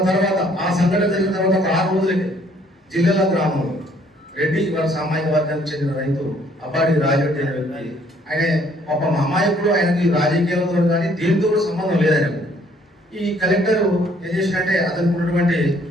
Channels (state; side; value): normal; both; correlation 0.63